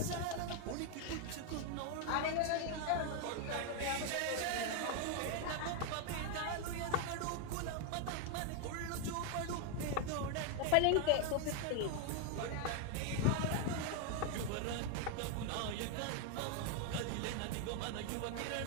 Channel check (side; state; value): both; different; correlation 0.01